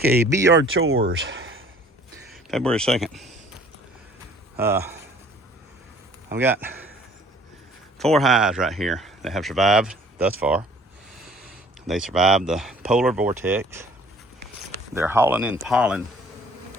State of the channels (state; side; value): normal; both; correlation 0.54